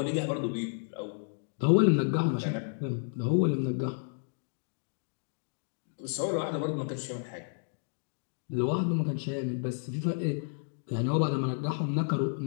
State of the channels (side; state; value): right; silent; digital silence